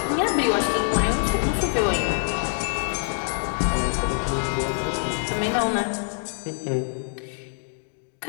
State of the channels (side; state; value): right; silent; digital silence